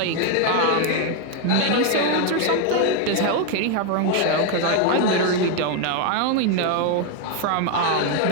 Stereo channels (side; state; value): both; different; correlation 0.01